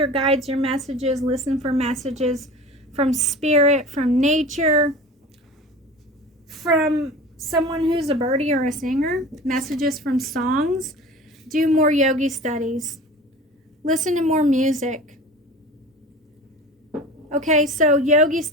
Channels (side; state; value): both; normal; correlation 0.37